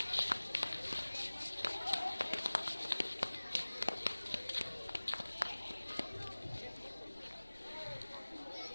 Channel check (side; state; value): both; inverted; correlation -1.00